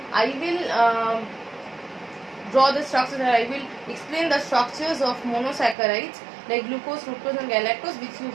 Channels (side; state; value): left; drops out; at 5.8 s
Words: I will draw the structures and I will explain the structures of monosaccharides like glucose, fructose and galactose, which you